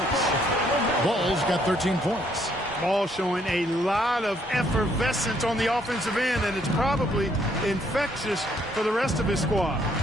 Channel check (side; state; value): both; normal; correlation 0.68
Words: Ball's got 13 points. Ball showing a lot of effervescence on the offensive end, and it's probably infectious for the rest of his squad.